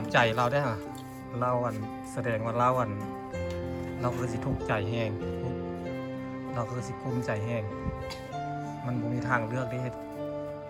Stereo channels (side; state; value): both; identical; correlation 1.00